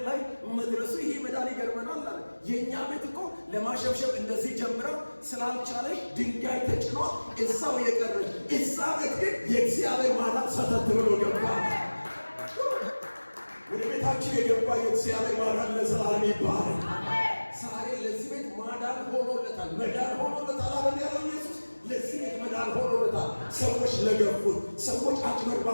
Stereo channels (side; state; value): both; inverted; correlation -1.00